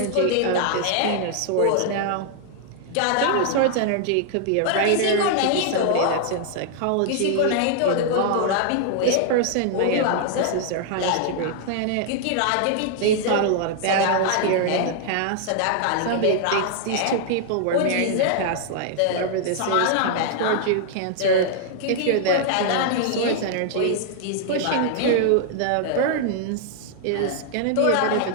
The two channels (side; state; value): both; different; correlation -0.01